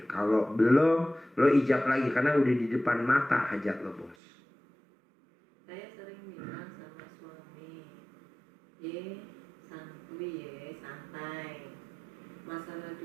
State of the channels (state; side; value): drops out; left; at 4.2 s